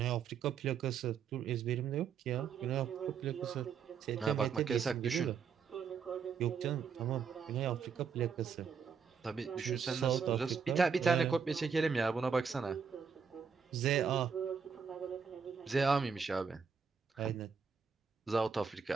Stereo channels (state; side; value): quieter; left; 6.3 dB